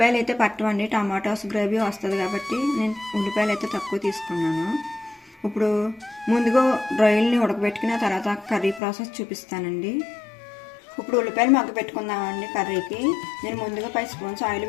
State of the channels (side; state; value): right; drops out; at 8.8 s